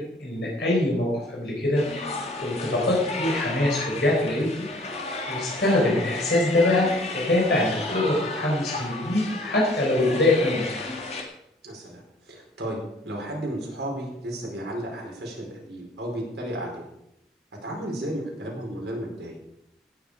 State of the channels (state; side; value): normal; both; correlation 0.55